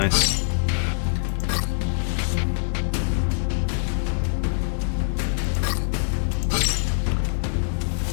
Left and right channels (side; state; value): right; silent; 63 dB below the other